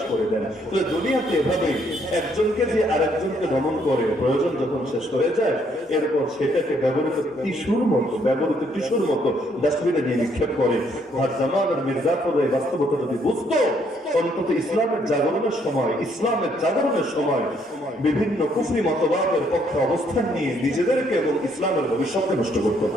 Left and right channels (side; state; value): both; normal; correlation 0.69